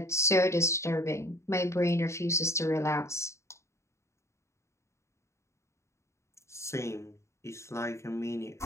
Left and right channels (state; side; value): late; right; 0.14 ms